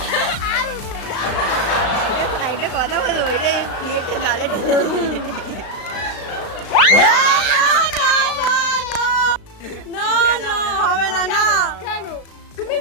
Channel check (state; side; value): late; right; 35 ms